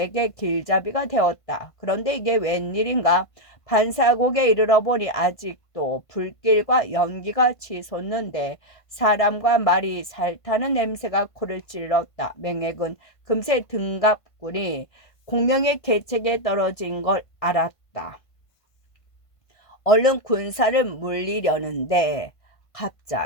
길잡이가 되었다. 그런데 이게 웬일인가? 반사곡에 이르러 보니 아직도 불길과 연기가 치솟는데 사람과 말이 살타는 냄새가 코를 찔렀다. 맹획은 금세 등갑군이 공명의 계책에 떨어진 걸 알았다. 얼른 군사를 물리려는데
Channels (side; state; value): right; late; 1.5 ms